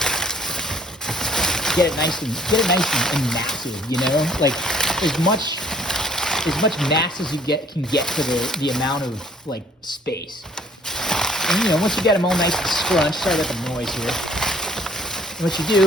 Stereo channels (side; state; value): both; normal; correlation 0.60